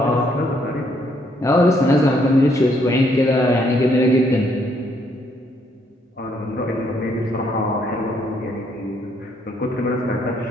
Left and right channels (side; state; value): both; normal; correlation 0.70